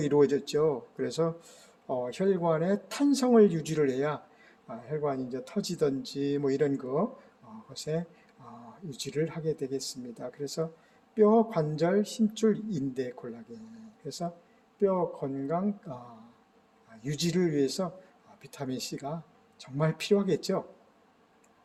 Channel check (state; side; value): identical; both; correlation 1.00